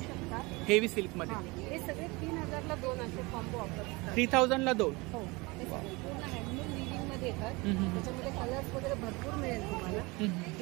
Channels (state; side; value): quieter; left; 24.9 dB